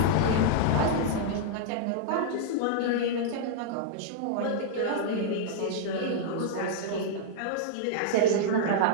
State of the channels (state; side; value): different; both; correlation -0.02